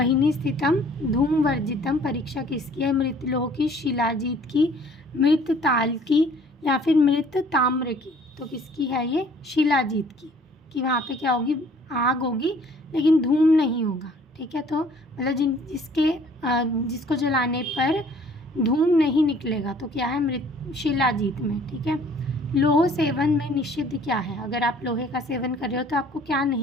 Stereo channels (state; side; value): normal; both; correlation 0.56